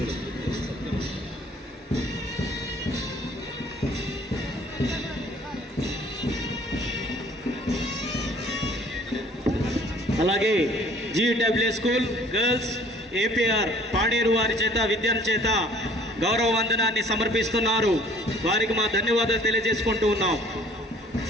అలాగే GW school girls APR Paderu వారి చేత విద్యార్థి చేత గౌరవ వందనాన్ని సమర్పిస్తున్నారు. వారికి మా ధన్యవాదాలు తెలియజేసుకుంటూ ఉన్నాం.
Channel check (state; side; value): normal; both; correlation 0.54